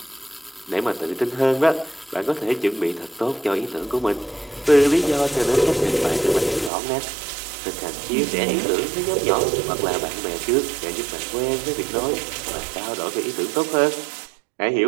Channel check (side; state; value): left; drops out; at 6.7 s